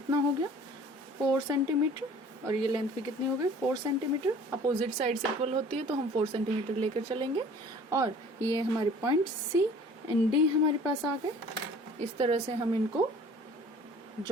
हो गया 4 सेंटीमीटर, और ये लेंथ भी कितनी हो गई 4 सेंटीमीटर। अपोजिट साइड्स इक्वल होती है तो हम 4 सेंटीमीटर लेकर चलेंगे। और ये हमारे पॉइंट सी एंड डी हमारे पास आ गए। इस तरह से हम इनको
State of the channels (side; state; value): both; normal; correlation 0.49